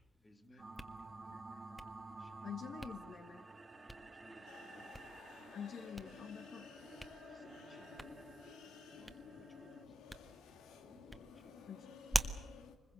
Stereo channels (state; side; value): normal; both; correlation 0.89